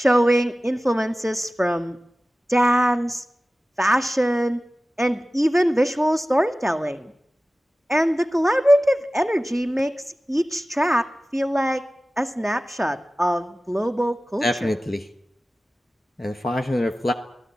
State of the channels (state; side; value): normal; both; correlation 0.96